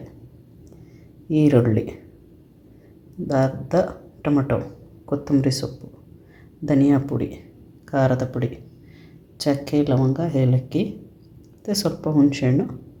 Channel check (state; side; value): identical; both; correlation 1.00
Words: ಈರುಳ್ಳಿ, ಅರ್ಧ ಟೊಮಟೊ, ಕೊತ್ತಂಬರಿ ಸೊಪ್ಪು, ಧನಿಯಾ ಪುಡಿ, ಖಾರದ ಪುಡಿ, ಚಕ್ಕೆ, ಲವಂಗ, ಏಲಕ್ಕಿ ಮತ್ತು ಸ್ವಲ್ಪ ಹುಣಸೆಹಣ್ಣು,